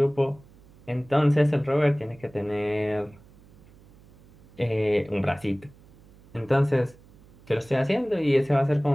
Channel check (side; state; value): right; noise; hum, 26 dB below the sound